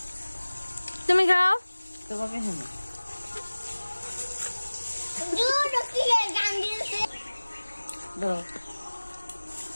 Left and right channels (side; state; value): both; inverted; correlation -1.00